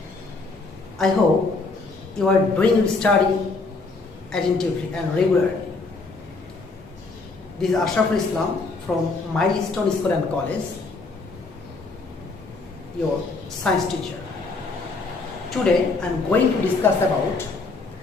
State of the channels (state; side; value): quieter; right; 3.8 dB